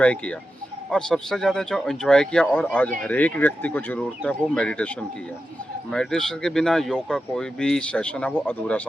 किया। और सबसे ज़्यादा जो एंजॉय किया और आज हर एक व्यक्ति को ज़रूरत है वो मेडिटेशन की है। मेडिटेशन के बिना योग का कोई भी सेशन है वो अधूरा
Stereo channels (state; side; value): normal; both; correlation 0.90